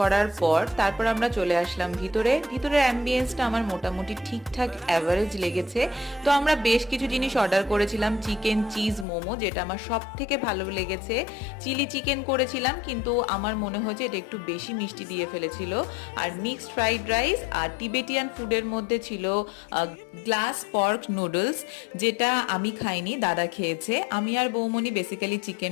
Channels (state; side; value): drops out; right; at 9.1 s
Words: পর তারপর আমরা চলে আসলাম ভিতরে। ভিতরের অ্যাম্বিয়েন্সটা আমার মোটামুটি ঠিকঠাক অ্যাভারেজ লেগেছে। তো আমরা বেশ কিছু জিনিস অর্ডার করেছিলাম, চিকেন চিজ মোমো, যেটা আমার সব থেকে ভালো লেগেছে। চিলি চিকেন করেছিলাম, কিন্তু আমার মনে হয়েছে এটা একটু বেশি মিষ্টি দিয়ে ফেলেছিল। আর মিক্সড ফ্রাইড রাইস, আর টিবেটিয়ান ফুডের মধ্যে ছিল গ্লাস পর্ক নুডলস, যেটা আমি খাইনি, দাদা খেয়েছে। আমি আর বৌমনি বেসিক্যালি